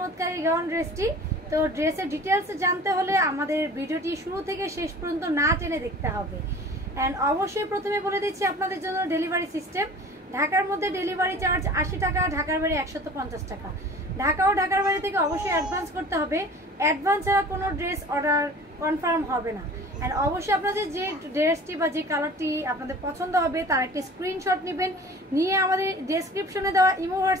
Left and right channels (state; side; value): normal; both; correlation 0.43